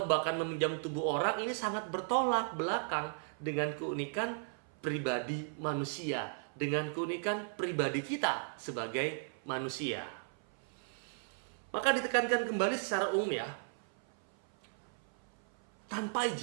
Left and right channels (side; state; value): left; silent; 54 dB below the other